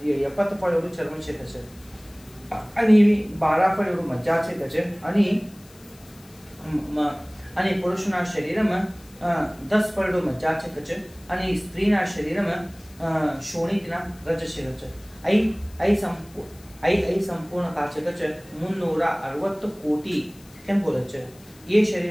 70 फळ एवढं चर्म छे छे आणि 12 फळ एवढं मज्जा छे छे आणि पुरुषना शरीर में 10 फळ एवढं मज्जा छे छे आणि स्त्रीना शरीर में शोणितना रज छे छे। आई संपूर्ण का छे छे 360 कोटी केम बोले छे। ये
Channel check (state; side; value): noise; left; hiss, 25 dB below the sound